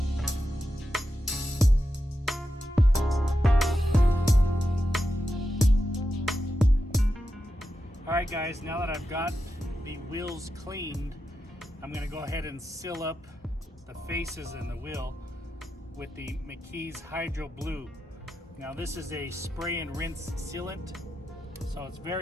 Alright guys, now that I've got the wheels cleaned, I'm going to go ahead and seal up the faces in the wheel with the McKee's Hydro Blue. Now this is a spray and rinse sealant, so it's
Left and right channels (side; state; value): both; normal; correlation 0.88